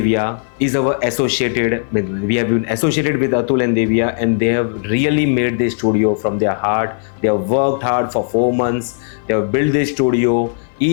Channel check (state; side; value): silent; right; 57 dB below the other